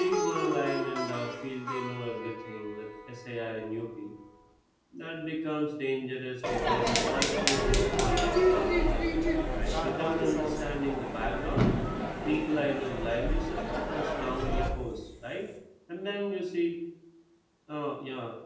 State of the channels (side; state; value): both; identical; correlation 1.00